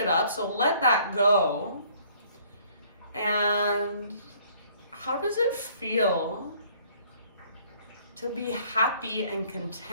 up. So let that go. And how does it feel to be happy and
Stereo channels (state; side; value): inverted; both; correlation -0.60